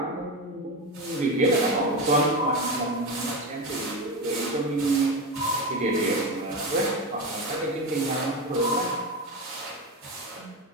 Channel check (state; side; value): normal; both; correlation 0.17